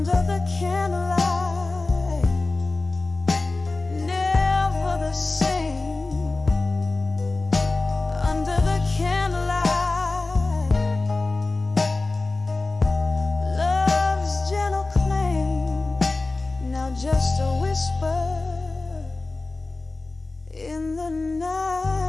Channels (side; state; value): right; quieter; 3.3 dB